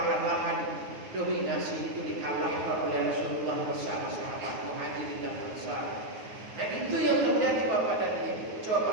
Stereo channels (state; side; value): late; left; 9.4 ms